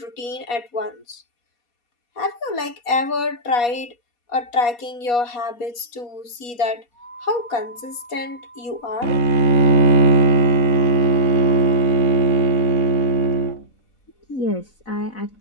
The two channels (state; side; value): late; right; 4.2 ms